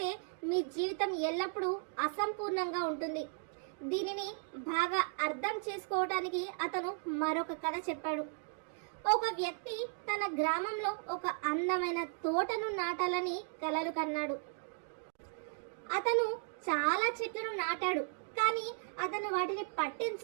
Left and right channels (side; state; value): left; silent; 54 dB below the other